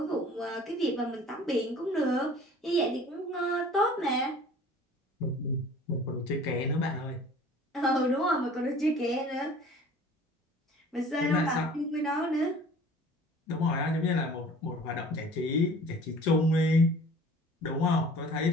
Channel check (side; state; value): both; normal; correlation 0.47